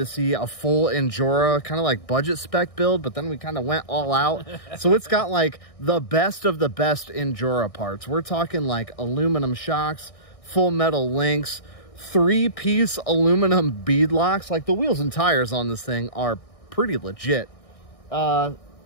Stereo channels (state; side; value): late; right; 1.6 ms